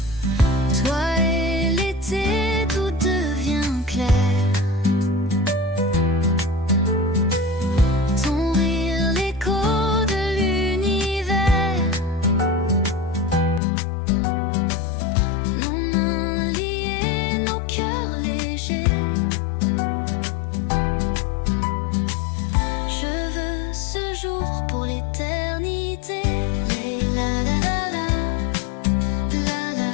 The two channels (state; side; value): drops out; right; at 13.6 s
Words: Toi et l'été, tout devient clair. Ton rire, l'écho de l'univers. Nos mains liées, nos cœurs légers. Je veux ce jour pour l'éternité. La la la la, la la,